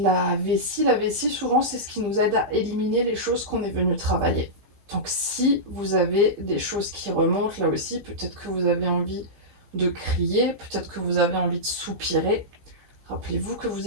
la vessie. La vessie, souvent, c'est ce qui nous aide à éliminer les choses qu'on est venu travailler. Donc, si vous avez des choses qui remontent, là aussi, peut-être que vous avez envie de crier, peut-être que vous avez envie de soupirer. Rappelez-vous que vous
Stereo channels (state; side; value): late; left; 15 ms